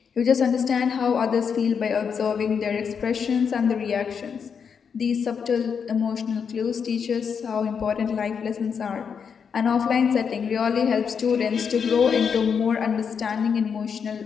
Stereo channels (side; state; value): right; quieter; 6.6 dB